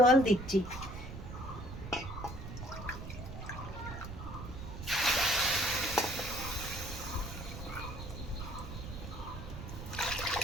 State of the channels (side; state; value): right; noise; rumble, 9 dB below the sound